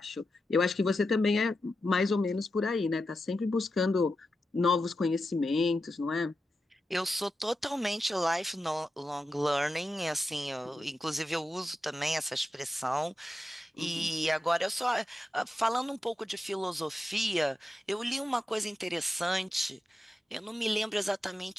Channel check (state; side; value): normal; both; correlation 0.90